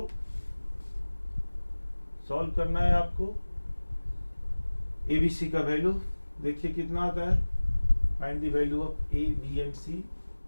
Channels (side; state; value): both; inverted; correlation -1.00